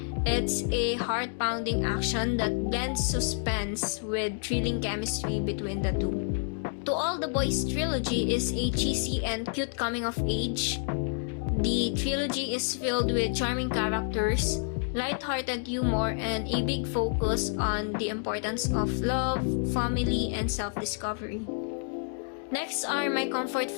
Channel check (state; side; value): silent; right; 59 dB below the other